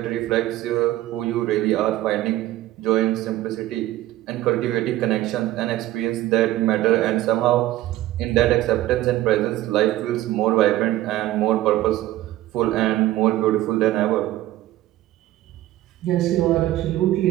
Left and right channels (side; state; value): left; quieter; 15.3 dB